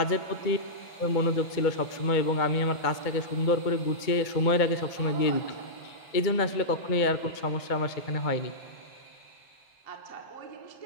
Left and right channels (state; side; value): late; right; 2.2 ms